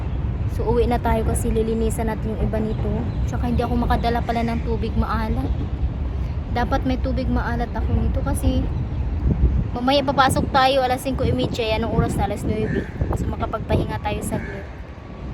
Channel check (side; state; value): both; identical; correlation 1.00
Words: So uwi na tayo kasi lilinisan natin yung iba nito. Tsaka hindi ako makadala pala ng tubig maalat. Dapat may tubig maalat ako nito kasi mamaya papasok tayo alas 5:30, anong oras na? Alas 9. So makapagpahinga tayo saglit.